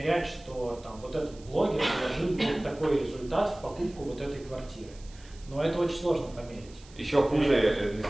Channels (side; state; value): right; noise; hiss, 24 dB below the sound